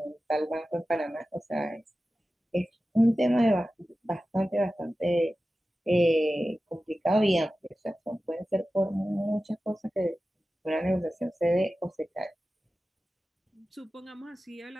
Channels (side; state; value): both; normal; correlation 0.94